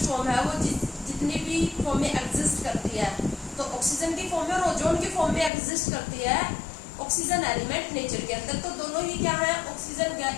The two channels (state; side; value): drops out; right; at 5.5 s